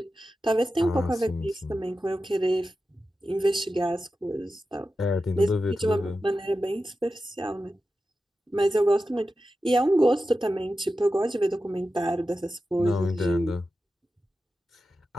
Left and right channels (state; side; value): normal; both; correlation 0.92